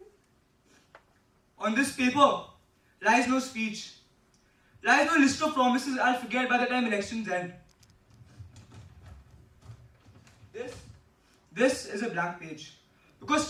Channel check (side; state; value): both; identical; correlation 1.00